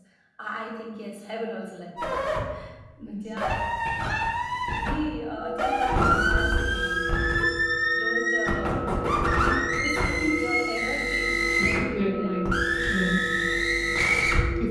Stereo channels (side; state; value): both; identical; correlation 1.00